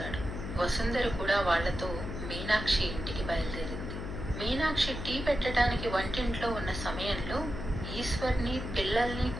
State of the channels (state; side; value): noise; left; hum, 7 dB below the sound